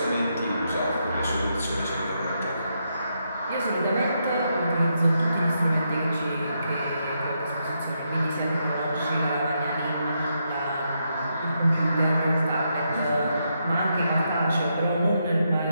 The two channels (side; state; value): both; inverted; correlation -0.81